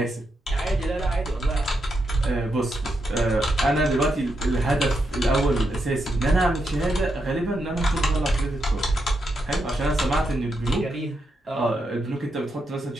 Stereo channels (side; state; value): both; normal; correlation 0.83